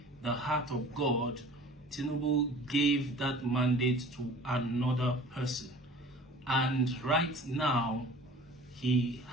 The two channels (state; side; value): normal; both; correlation 0.45